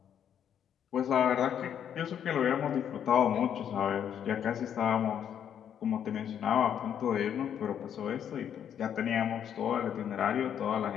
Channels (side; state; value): right; quieter; 9.1 dB